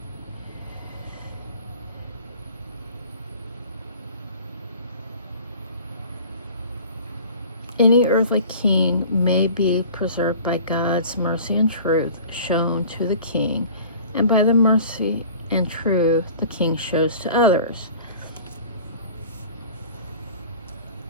Any earthly king may be preserved by God's mercy and truth shown to the king, and by the mercy and truth the king shows to others.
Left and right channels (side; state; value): both; inverted; correlation -0.44